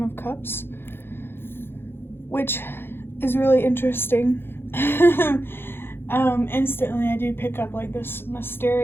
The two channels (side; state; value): right; late; 0.11 ms